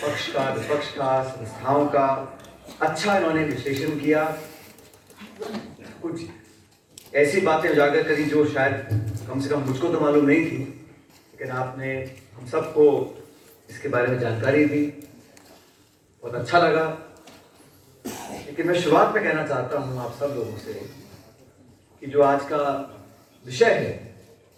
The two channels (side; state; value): both; identical; correlation 1.00